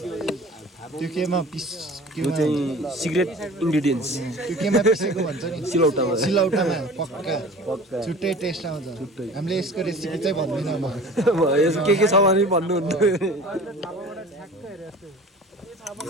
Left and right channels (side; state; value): both; normal; correlation 0.42